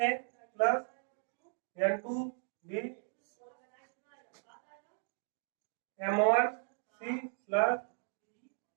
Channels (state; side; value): silent; left; digital silence